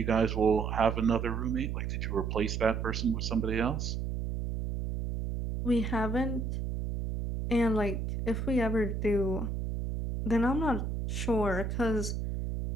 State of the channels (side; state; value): right; noise; hum, 3 dB below the sound